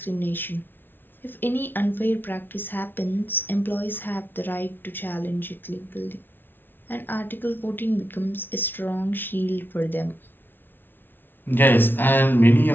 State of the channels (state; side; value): late; right; 0.098 ms